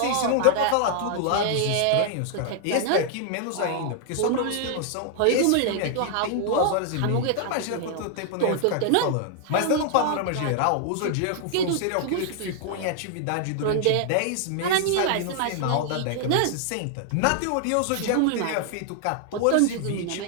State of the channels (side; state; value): both; different; correlation 0.00